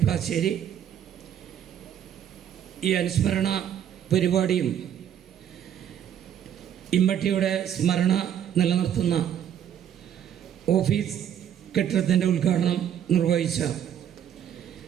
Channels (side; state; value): left; quieter; 9.7 dB